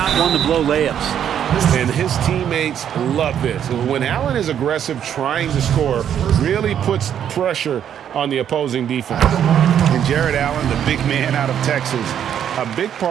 one to blow layups. And his teammates love this. When Allen is aggressive, trying to score, really puts pressure on the opposing defense. And Jared Allen, the big man out of Texas, a big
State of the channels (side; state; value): left; quieter; 9.4 dB